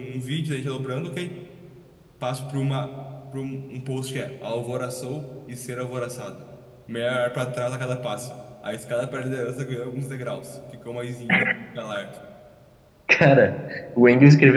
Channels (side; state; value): both; identical; correlation 1.00